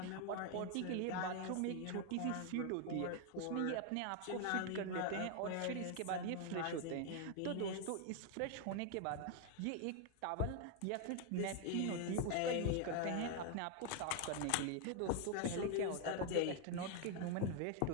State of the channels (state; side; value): different; both; correlation 0.00